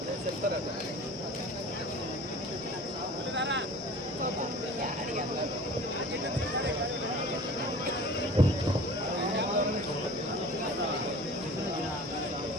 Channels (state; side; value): normal; both; correlation 0.42